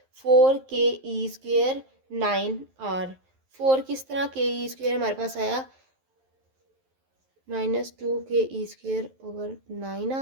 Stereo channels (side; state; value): left; late; 11 ms